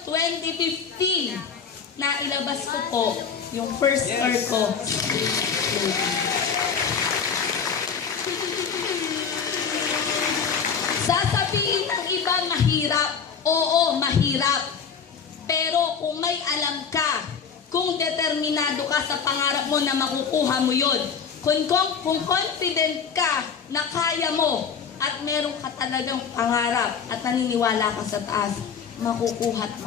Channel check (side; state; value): right; quieter; 6.5 dB